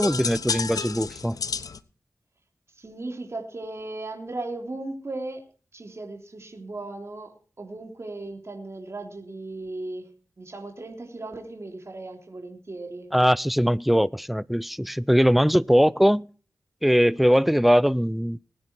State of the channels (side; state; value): both; normal; correlation 0.96